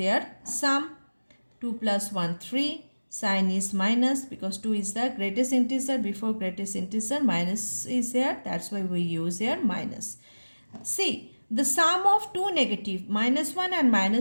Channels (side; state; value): both; inverted; correlation -1.00